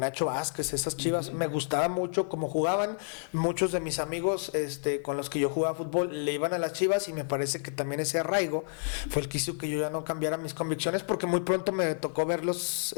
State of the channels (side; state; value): right; silent; 58 dB below the other